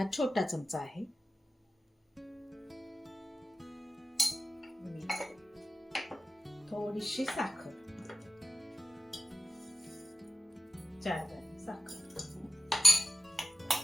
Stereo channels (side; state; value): both; normal; correlation 0.91